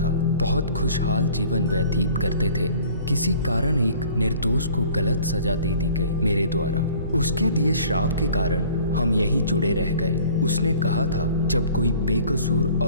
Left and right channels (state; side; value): inverted; both; correlation -0.50